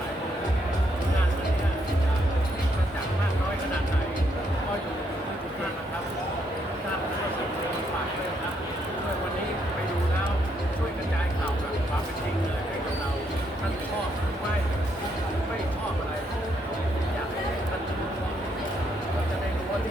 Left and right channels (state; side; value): normal; both; correlation 0.74